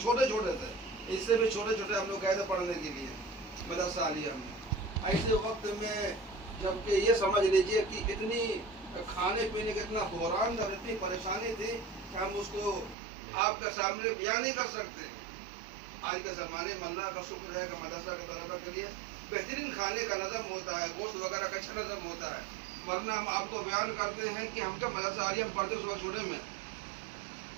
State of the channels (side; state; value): left; drops out; at 13.0 s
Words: छोटे थे, इससे भी छोटे छोटे हम लोग गए थे पढ़ने के लिए मदरसा आलिया में। ऐसे वक्त में जबकि ये समझ लीजिए कि इतनी खाने पीने का इतना बहरान था, इतनी परेशानी थी कि हम उसको आपके सामने बयान नहीं कर सकते। आज के ज़माने में अल्लाह का शुक्र है कि मदरसा के तलबा के लिए बेहतरीन खाने का नज़म होता है, गोश्त वगैरह का अच्छा नज़म होता है, वरना हम आपको बयान करते हैं कि हम जब मदरसा आलिया में पढ़ते सुबह छोटे में,